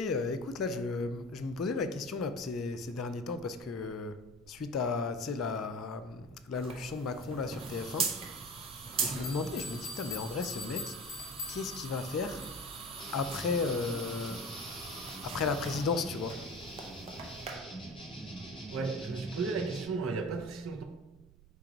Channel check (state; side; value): noise; right; rumble, 23 dB below the sound